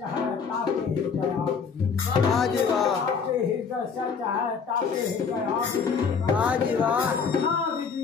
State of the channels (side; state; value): right; quieter; 5.9 dB